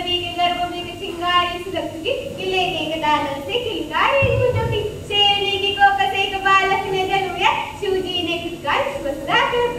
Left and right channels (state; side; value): identical; both; correlation 1.00